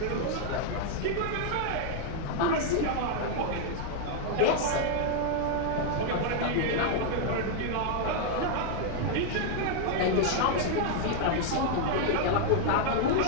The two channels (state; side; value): different; both; correlation 0.00